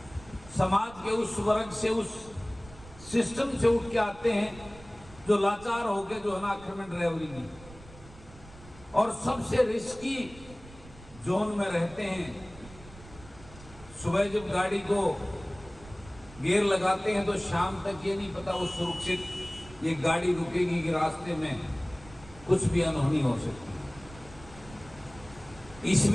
समाज के उस वर्ग से, उस सिस्टम से उठ के आते हैं जो लाचार हो गए, जो है ना आखिर में ड्राइवरी की, और सबसे रिस्की जोन में रहते हैं। सुबह जब गाड़ी को गियर लगाते हैं तो शाम तक ये नहीं पता वो सुरक्षित ये गाड़ी रुकेगी कि रास्ते में कुछ भी अनहोनी हो सकती है।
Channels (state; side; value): noise; right; rumble, 19 dB below the sound